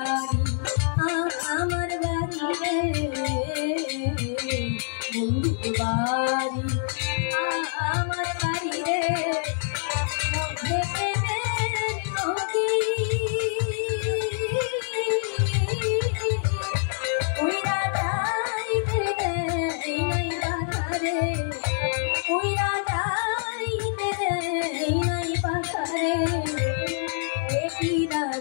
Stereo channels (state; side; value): silent; right; 61 dB below the other